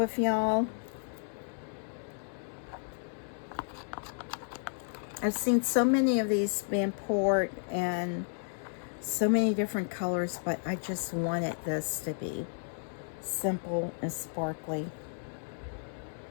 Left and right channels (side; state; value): right; silent; 56 dB below the other